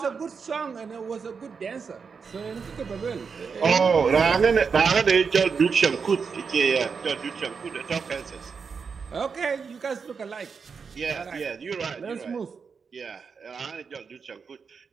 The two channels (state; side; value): quieter; left; 5.6 dB